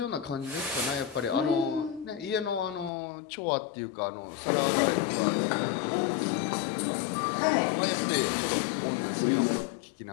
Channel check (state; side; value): drops out; right; at 2.9 s